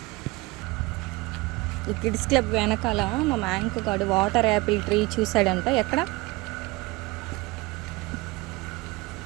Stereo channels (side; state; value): left; quieter; 22.6 dB